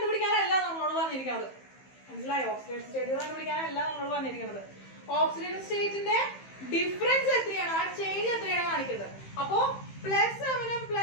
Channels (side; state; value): right; late; 15 ms